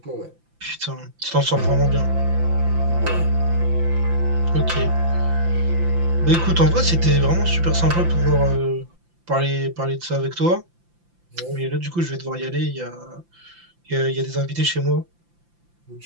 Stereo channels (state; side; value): late; left; 5.8 ms